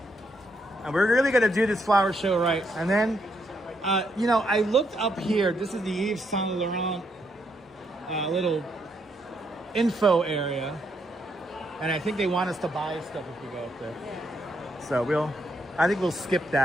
And we're really gonna do this flower show right. And then, you know, I looked up here. This is the Yves Saint Laurent little info area. And I think they want us to buy stuff if we go up there. So I think we'll skip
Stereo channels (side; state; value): both; normal; correlation 0.76